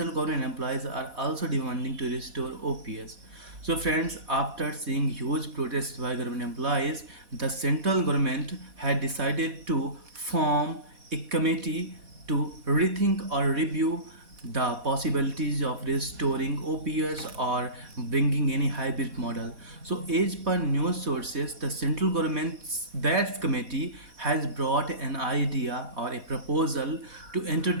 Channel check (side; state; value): left; late; 4.1 ms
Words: government employees are also demanding to restore OPS. So friends, after seeing huge protests by government employees, the central government had decided to form a committee to rethink or review the possibilities of restoring OPS or bringing any hybrid model. So as per news sources, the central government's that committee has brought an idea or a proposal to